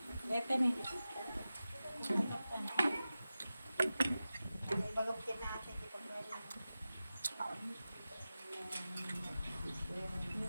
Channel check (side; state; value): both; inverted; correlation -0.94